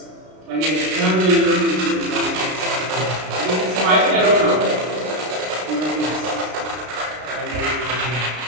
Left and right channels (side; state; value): left; late; 33 ms